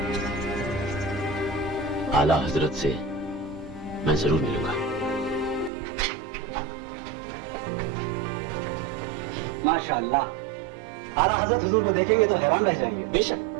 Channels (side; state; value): left; drops out; at 5.7 s